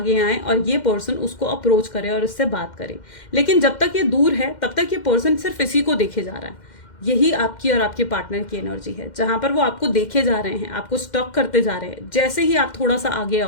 आए और ये पर्सन उसको अप्रोच करे और इससे बात करे। लेकिन जब तक ये दूर है तब तक ये पर्सन सिर्फ इसी को देखे जा रहा है। यही आपकी और आपके पार्टनर की एनर्जी है, जहां पर वो आपको देखे जा रहे हैं, आपको स्टॉक करते जा रहे हैं। जैसे ही आप थोड़ा सा आगे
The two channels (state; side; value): late; right; 2.1 ms